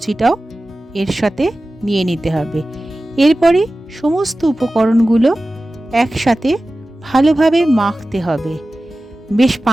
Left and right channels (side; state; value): both; normal; correlation 0.96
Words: এর সাথে নিয়ে নিতে হবে। এরপরে সমস্ত উপকরণগুলো একসাথে ভালোভাবে মাখতে হবে। বেশ